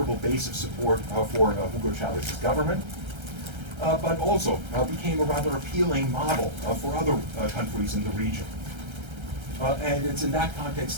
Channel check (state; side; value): late; left; 1.3 ms